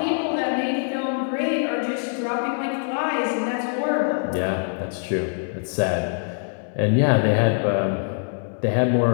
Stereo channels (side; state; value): right; silent; digital silence